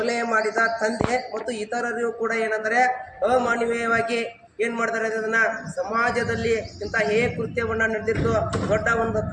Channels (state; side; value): identical; both; correlation 1.00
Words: ಮಾಡಿದ ತಂದೆ ಮತ್ತು ಇತರರು ಕೂಡ ಏನಂದರೆ ಅಮಾನವೀಯವಾಗಿ ಏನು ಮಾಡ್ತಾರೆ ಅದನ್ನು ಸಮಾಜದಲ್ಲಿ ಇಂಥ ಕೃತ್ಯವನ್ನು ನಡೆದಿದ್ದು ದೊಡ್ಡ ಒಂದು